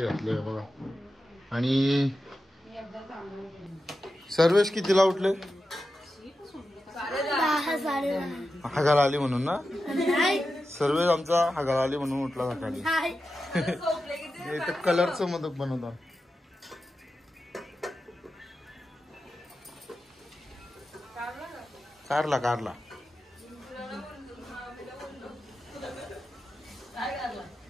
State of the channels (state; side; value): normal; both; correlation 0.91